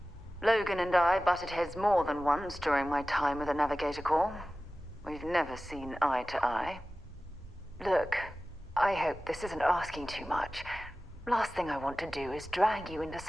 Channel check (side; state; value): both; normal; correlation 0.96